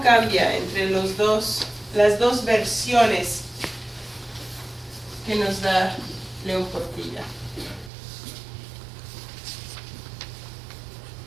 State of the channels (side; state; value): left; drops out; at 7.9 s